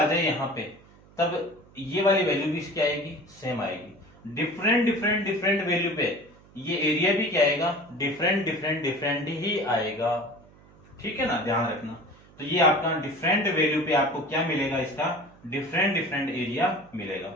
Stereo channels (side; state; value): right; noise; hum, 26 dB below the sound